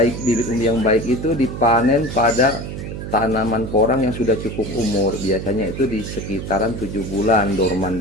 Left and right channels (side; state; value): right; noise; hum, 7 dB below the sound